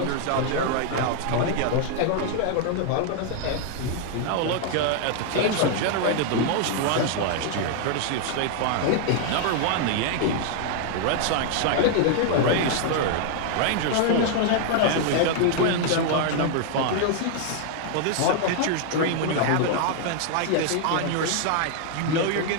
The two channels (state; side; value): different; both; correlation 0.00